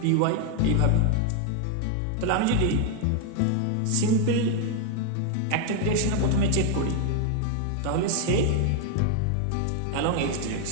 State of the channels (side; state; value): both; different; correlation 0.01